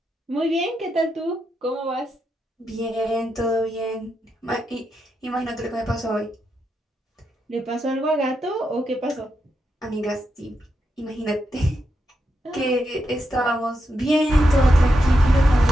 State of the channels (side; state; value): both; normal; correlation 0.85